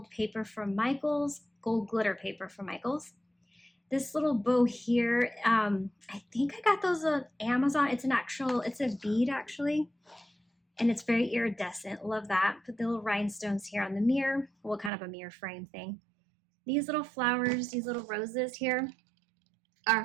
paper from Michaels, gold glitter paper from Michaels. This little bow here, I think I got those on Amazon. It's a bead actually, and it's very iridescent. Love that. Put the little rhinestones here on the mirror. Well, kind of a mirror frame thing. These little flowers, these little roses here are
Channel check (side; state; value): left; drops out; at 14.9 s